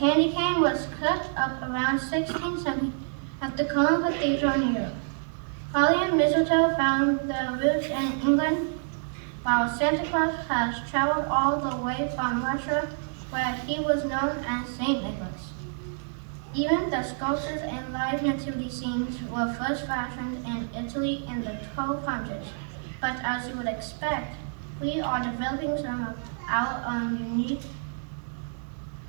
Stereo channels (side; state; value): left; silent; 59 dB below the other